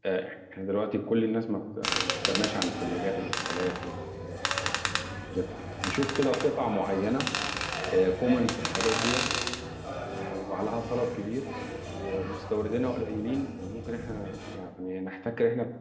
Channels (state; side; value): identical; both; correlation 1.00